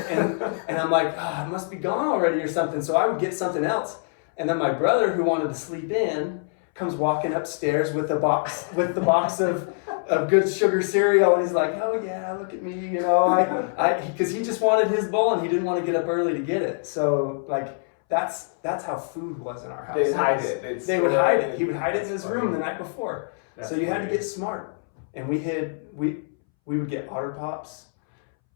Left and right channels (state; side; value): silent; right; 62 dB below the other